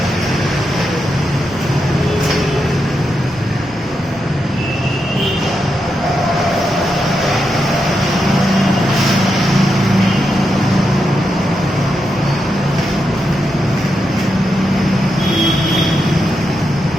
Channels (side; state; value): both; normal; correlation 0.85